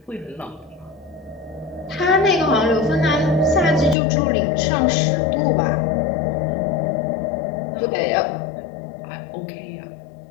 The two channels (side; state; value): right; drops out; at 4.0 s